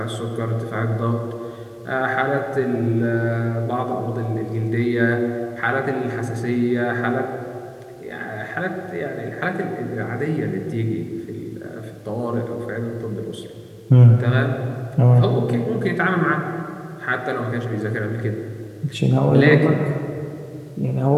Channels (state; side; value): identical; both; correlation 1.00